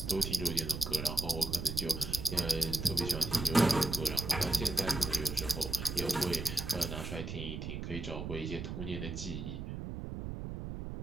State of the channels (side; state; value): right; noise; rumble, 6 dB below the sound